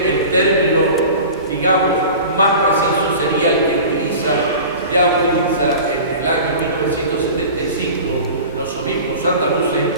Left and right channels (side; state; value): both; inverted; correlation -0.37